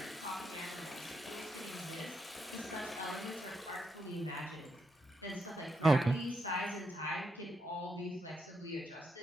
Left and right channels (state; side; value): normal; both; correlation 0.81